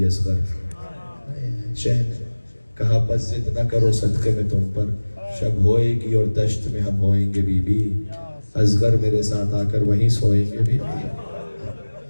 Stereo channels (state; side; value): inverted; both; correlation -1.00